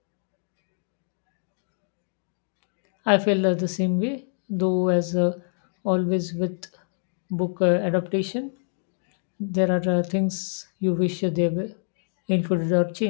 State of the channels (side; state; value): right; silent; digital silence